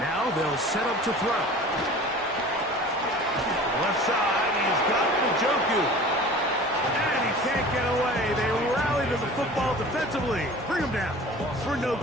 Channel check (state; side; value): normal; both; correlation 0.41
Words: they'll set up to throw. Left side, he's got Njoku. And he can't get away. They rally to the football defensively. Bring him down for no